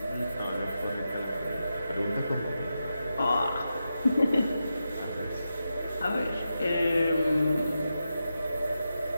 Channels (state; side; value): inverted; both; correlation -0.89